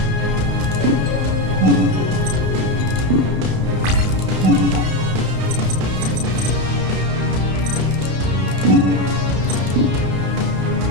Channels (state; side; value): late; left; 32 ms